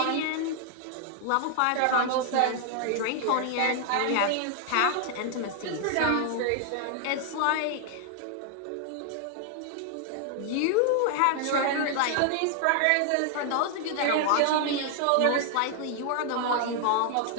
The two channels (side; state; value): both; different; correlation 0.00